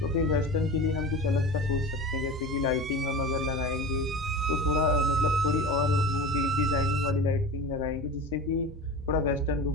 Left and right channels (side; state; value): both; normal; correlation 0.32